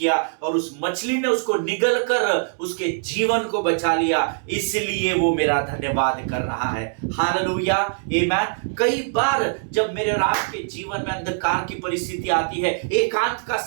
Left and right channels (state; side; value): silent; left; digital silence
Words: और उस मछली ने उसको निगल कर उसके जीवन को बचा लिया, इसलिए वो मेरा धन्यवाद कर रहा है। हालेलुया, आमेन। कई बार जब मेरे और आपके जीवन में अंधकार की परिस्थिति आती है, एकांत का